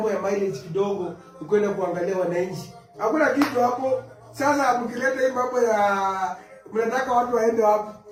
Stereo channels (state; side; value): identical; both; correlation 1.00